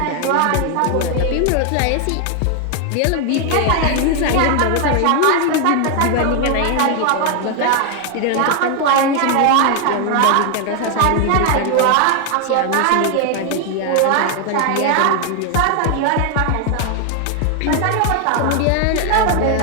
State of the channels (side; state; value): both; different; correlation 0.00